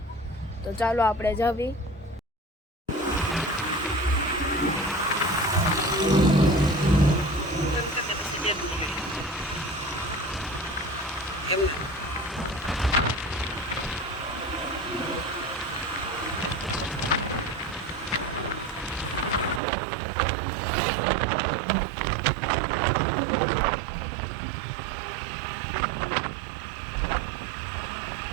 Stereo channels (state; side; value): drops out; left; at 19.6 s